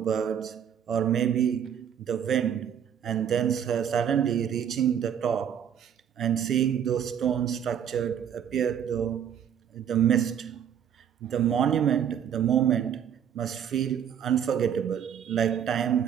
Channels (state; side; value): quieter; left; 8.7 dB